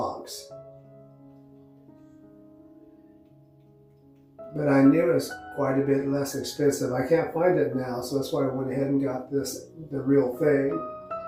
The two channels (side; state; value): both; identical; correlation 1.00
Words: But I knew it was quite a bit less expensive. I can't find it now, so that's why I went ahead and got this, the real thing.